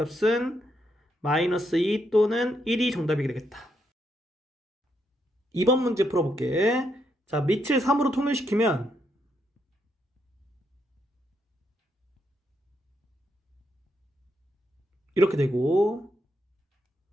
마이너스 2 또는 1이 정답이 되겠다. 2번 문제 풀어볼게. 자, 밑을 3으로 통일시키면 이렇게 되고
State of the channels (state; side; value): normal; both; correlation 0.78